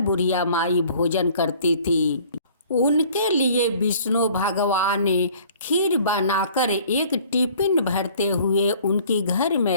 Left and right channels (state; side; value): inverted; both; correlation -0.53